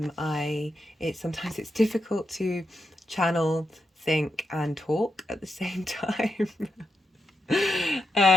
it's difficult to channel, think and talk at the same time.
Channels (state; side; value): normal; both; correlation 0.85